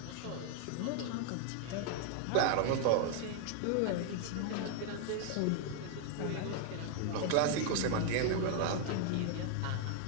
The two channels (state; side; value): different; both; correlation 0.00